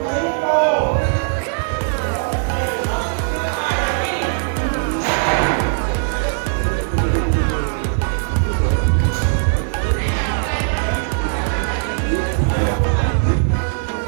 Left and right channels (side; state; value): left; silent; 61 dB below the other